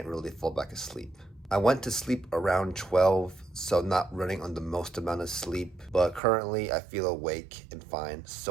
really fall back asleep. I went to sleep around 12, so not running on the most amount of sleep, but currently I feel awake and fine,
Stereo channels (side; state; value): left; drops out; at 6.2 s